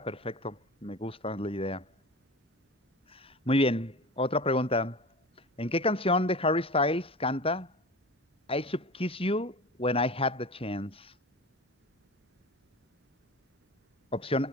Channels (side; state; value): both; normal; correlation 0.33